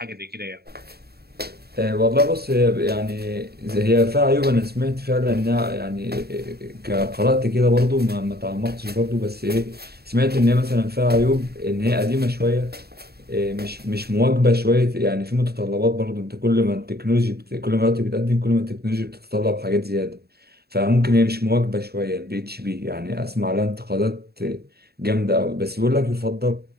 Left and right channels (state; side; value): late; left; 0.46 ms